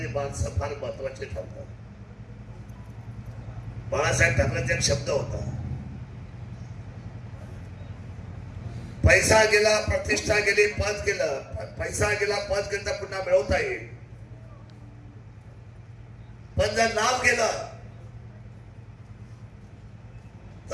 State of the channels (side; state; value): both; identical; correlation 1.00